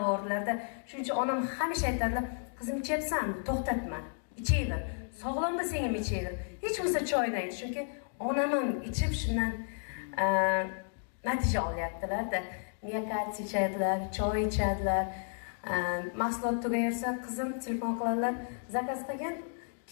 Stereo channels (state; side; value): silent; right; digital silence